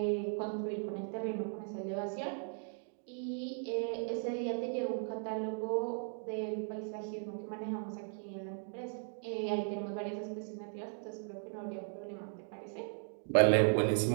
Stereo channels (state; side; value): silent; left; 53 dB below the other